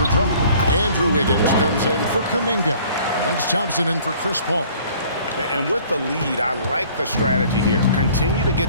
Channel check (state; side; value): inverted; both; correlation -0.53